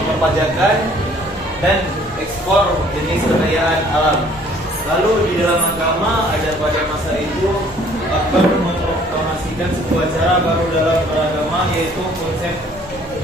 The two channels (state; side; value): normal; both; correlation 0.57